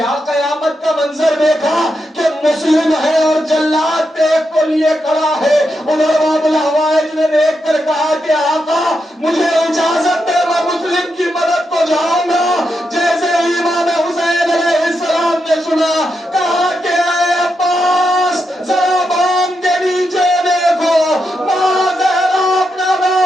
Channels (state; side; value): normal; both; correlation 0.85